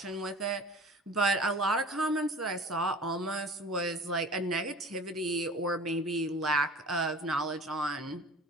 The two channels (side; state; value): both; normal; correlation 0.42